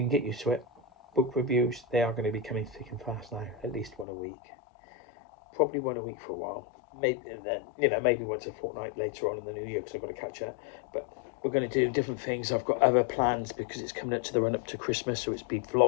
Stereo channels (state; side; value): drops out; right; at 4.0 s